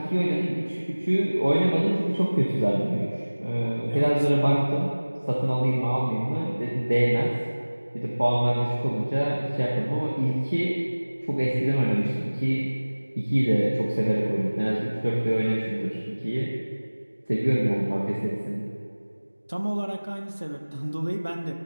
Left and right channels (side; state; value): both; inverted; correlation -1.00